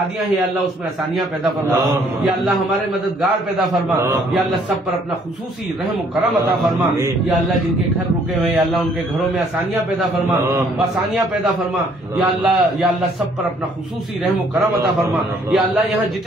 ہیں یا اللہ اس میں آسانیاں پیدا فرما. یا اللہ ہمارے مددگار پیدا فرما. یا اللہ سب پر اپنا خصوصی رحم و کرم عطا فرما. یا اللہ جن کے گھر رکے ہوئے یا اللہ ان کے گھروں میں آسانیاں پیدا فرما آسانیاں پیدا فرما. یا اللہ سب پر اپنا خصوصی رحم و کرم عطا فرما. یا اللہ یہاں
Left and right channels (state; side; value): normal; both; correlation 0.63